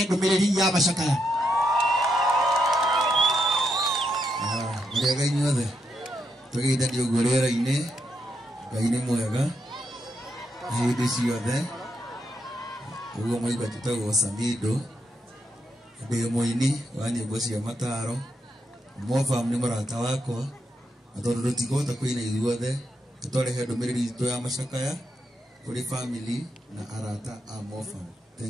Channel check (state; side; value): normal; both; correlation 0.82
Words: Bumereri ya Mashakaya Muriaga inyuothe tugithanio gurera-ini Ngai ni mwega hindi ciothe uguo mwaigua tutagwo Samido ndi muini wa nyimbo cia mataro Mofam ni murata wakwa atondu rutigota kuina ithuothe tutorehe ndumiriri itu ya Mashakaya kuri family na arata a Mofam.